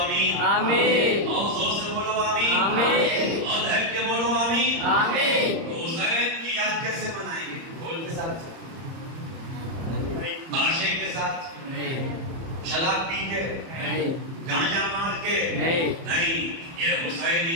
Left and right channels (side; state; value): left; late; 30 ms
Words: آمین، اور زور سے بولو آمین، آمین، اور دھڑ کے بولو آمین، آمین۔ تو حسین کی یاد کیسے منائیں گے؟ ڈھول کے ساتھ، باشے کے ساتھ، شراب پی کے، گانجا مار کے نہیں، یہ